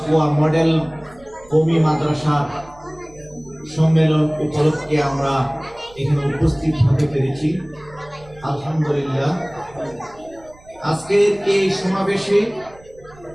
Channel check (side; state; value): right; noise; rumble, 25 dB below the sound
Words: মডেল কওমি মাদ্রাসার সম্মেলন উপলক্ষে আমরা এখানে উপস্থিত হতে পেরেছি। আলহামদুলিল্লাহ। আজকের এই সমাবেশে